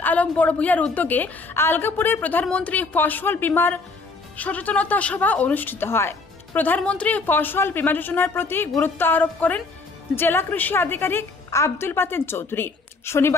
আলম বড়ভূইয়ার উদ্যোগে আলগাপুরে প্রধানমন্ত্রী ফসল বীমার সচেতনতা সভা অনুষ্ঠিত হয়। প্রধানমন্ত্রী ফসল বীমা যোজনার প্রতি গুরুত্ব আরোপ করেন জেলা কৃষি আধিকারিক আব্দুল বাতেন চৌধুরী।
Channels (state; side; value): quieter; right; 3.9 dB